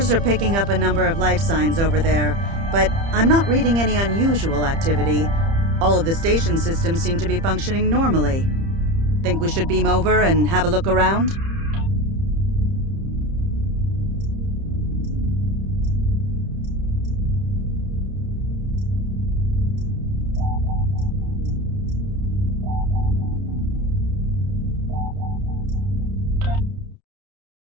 are picking up a number of life signs over there, but I'm not reading any unusual activity. All of the station systems seem to be functioning normally. Think we should beam over and have a look around?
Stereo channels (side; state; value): left; late; 30 ms